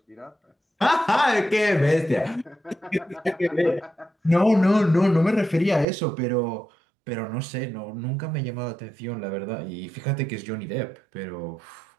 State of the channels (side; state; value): left; drops out; at 5.9 s